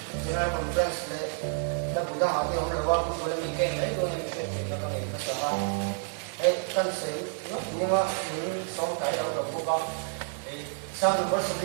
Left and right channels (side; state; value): left; silent; 58 dB below the other